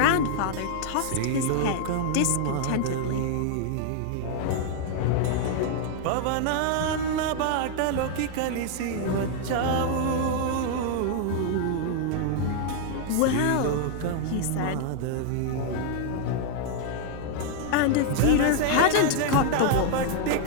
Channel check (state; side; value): different; both; correlation 0.00